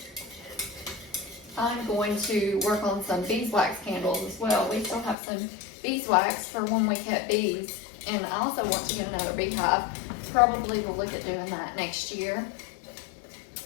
I'm going to work on some beeswax candles as well. We still have some beeswax for when we cut bees, and I also want to get another beehive. Probably will look at doing that next year.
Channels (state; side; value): drops out; right; at 5.2 s